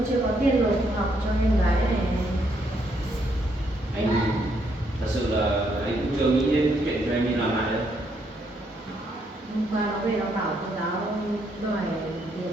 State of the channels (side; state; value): both; normal; correlation 0.73